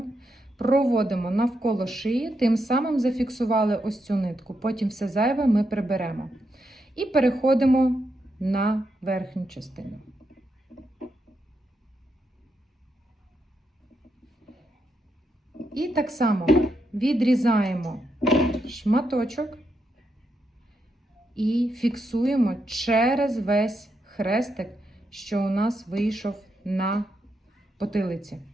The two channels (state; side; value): normal; both; correlation 0.82